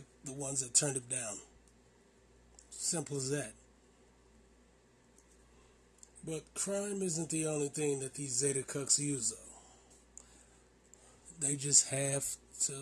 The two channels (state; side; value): identical; both; correlation 1.00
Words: the ones that turned him down. Simple as that. But crime isn't the only thing that these Zeta cucks use, though. They just have